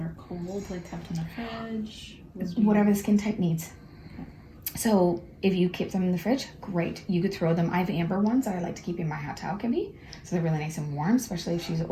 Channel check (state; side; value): identical; both; correlation 1.00